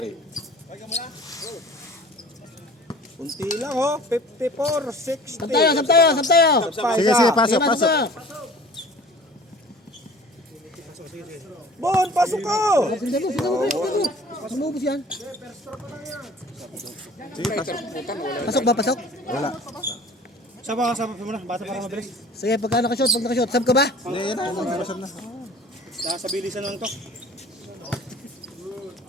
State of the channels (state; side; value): normal; both; correlation 0.46